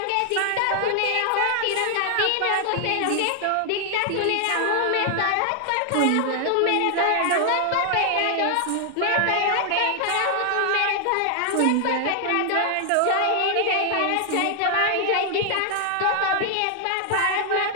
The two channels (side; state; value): both; different; correlation 0.00